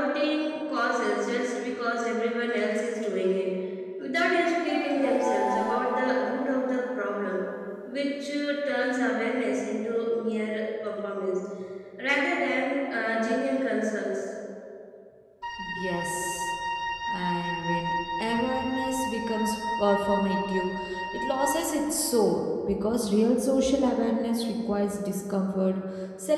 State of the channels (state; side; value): identical; both; correlation 1.00